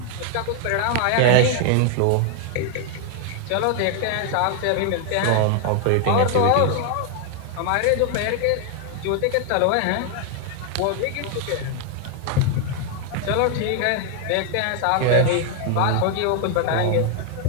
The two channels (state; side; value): different; both; correlation 0.00